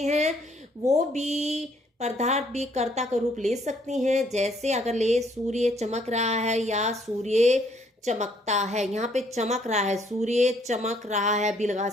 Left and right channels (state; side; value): normal; both; correlation 0.66